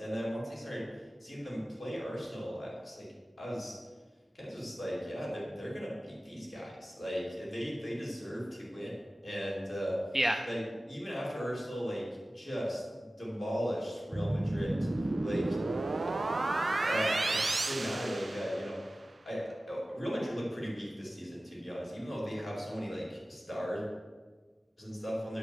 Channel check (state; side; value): normal; both; correlation 0.96